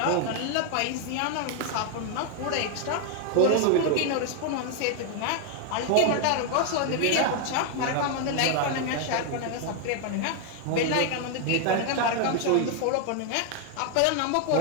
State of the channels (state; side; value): different; both; correlation 0.00